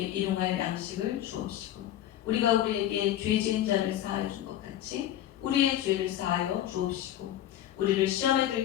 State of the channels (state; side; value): quieter; right; 12.2 dB